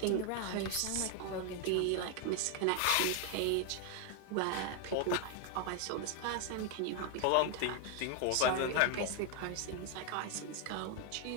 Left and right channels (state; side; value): different; both; correlation 0.01